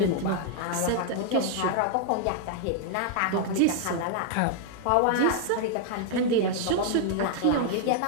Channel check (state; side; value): different; both; correlation 0.00